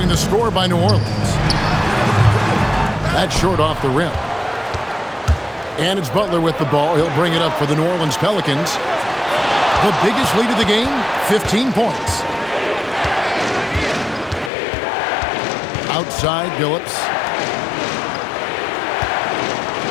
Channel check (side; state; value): right; drops out; at 14.5 s